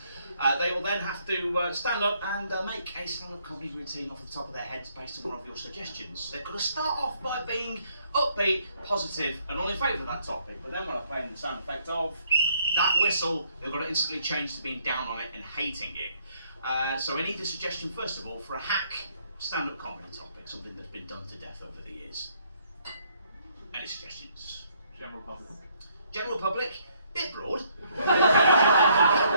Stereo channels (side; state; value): both; inverted; correlation -0.68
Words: They will then have to stand up and make a stand-up comedy routine off the top of their heads based on one of your suggestions. They've got to start off by being upbeat, positive, and all in favour of that topic. But then when I play in the sound effect of that whistle, they've got to instantly change to being down on it and hating it. So I need a suggestion, first of all, for a hack stand-up comedy topic, something that's been done to death over the years. Any suggestions? General public. General public, bit broad.